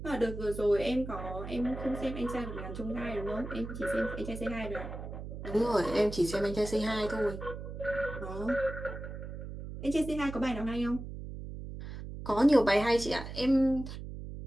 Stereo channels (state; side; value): noise; right; hum, 9 dB below the sound